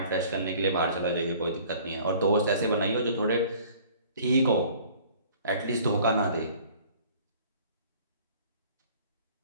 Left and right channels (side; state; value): both; inverted; correlation -0.51